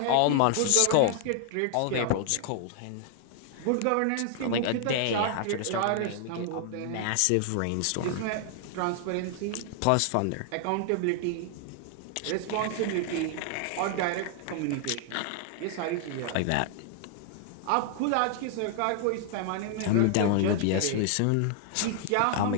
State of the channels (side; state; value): both; different; correlation 0.00